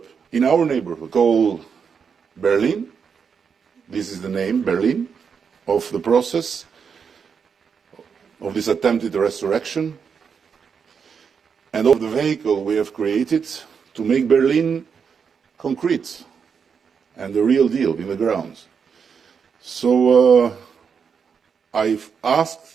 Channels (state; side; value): quieter; left; 6.4 dB